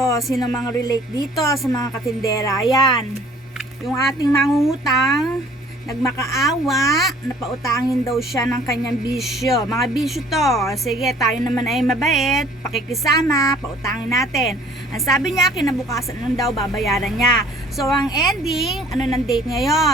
sino mga relate dito sa mga katindera? Ayan, yung ating mangungutang, nagmakaawa, napautangin daw siya ng kanyang bisyo. Mga bisyo to. Sige, tayo naman ay mabait, pakikisama, pautangin natin. Ang sabi niya, kinabukasan lang daw babayaran niya. So, ang ending, ano ng date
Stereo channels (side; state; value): both; normal; correlation 0.54